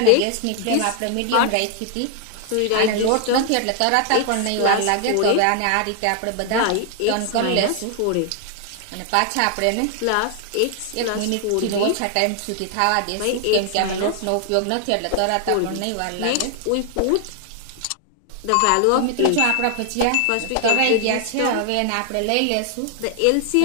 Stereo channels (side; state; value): both; different; correlation 0.00